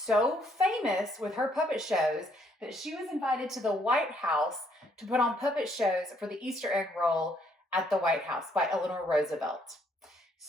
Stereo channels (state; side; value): normal; both; correlation 0.68